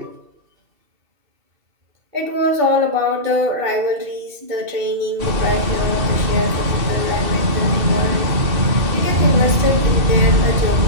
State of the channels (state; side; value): late; left; 2.7 ms